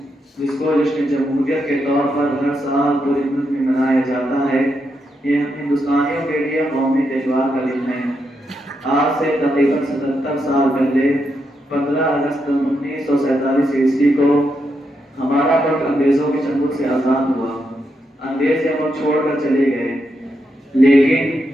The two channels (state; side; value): normal; both; correlation 0.82